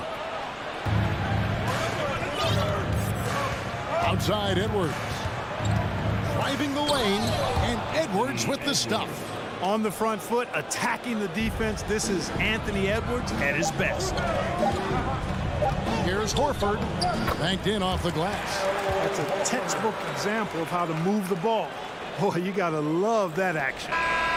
Outside Edwards. Driving the lane, and Edwards with the stuff. On the front foot, attacking the defense. This is Anthony Edwards at his best. Here's Horford. Banked in off the glass. That's a textbook example of how to move the ball. Boy, you got to love that action.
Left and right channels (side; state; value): both; identical; correlation 1.00